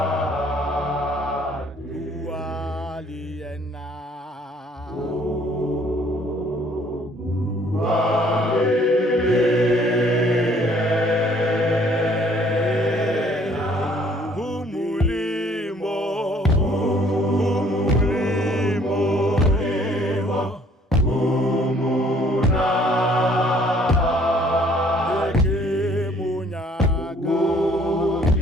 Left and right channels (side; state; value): both; normal; correlation 0.60